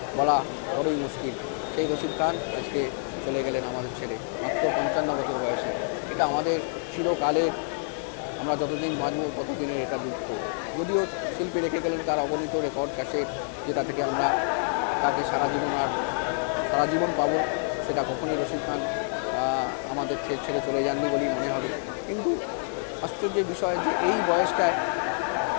বলা বড়ই মুশকিল। সেই রশিদ খান আজকে চলে গেলেন আমাদের ছেড়ে, মাত্র 55 বছর বয়সে। এটা আমাদের চিরকালের, আমরা যতদিন বাঁচব ততদিনের এটা দুঃখ। যদিও শিল্পী রেখে গেলেন তার অগণিত রেকর্ড ক্যাসেট, যেটা থেকে আমরা তাকে সারা জীবন পাবো, সেটা কখনই রশিদ খান আমাদের ছেড়ে চলে যাননি বলেই মনে হবে। কিন্তু আশ্চর্যের বিষয় যে এই বয়সটায়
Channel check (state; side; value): silent; right; digital silence